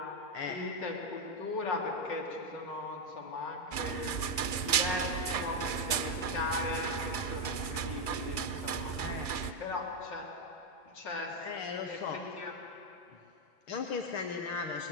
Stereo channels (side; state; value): right; late; 1.7 ms